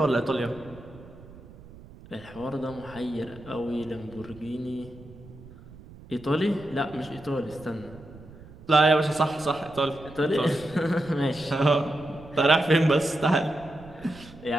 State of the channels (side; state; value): right; noise; rumble, 19 dB below the sound